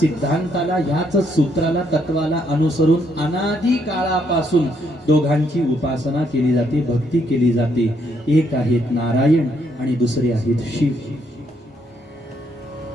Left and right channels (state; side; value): normal; both; correlation 0.73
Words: ह्याच सूत्राला, तत्वाला अनुसरून अनादी काळापासून दोघांची उपासना केली जाते, भक्ती केली जाते. एक आहेत नारायण आणि दुसरे आहेत शिव.